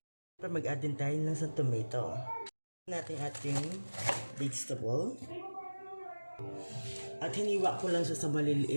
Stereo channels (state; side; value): inverted; both; correlation -1.00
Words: Mag-add din tayo ng sa tomato. Natin ating vegetable. At hiniwa ko lang siya sa